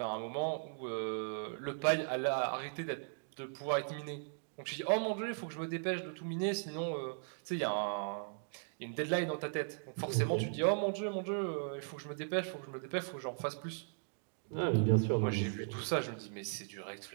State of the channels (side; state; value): left; silent; digital silence